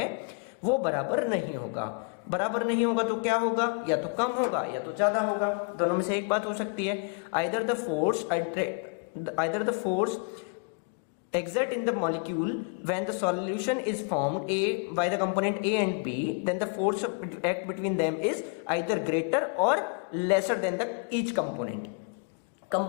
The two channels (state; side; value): quieter; right; 38.0 dB